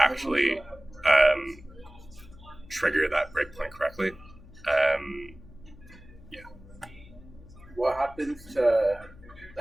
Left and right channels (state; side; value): noise; left; hum, 20 dB below the sound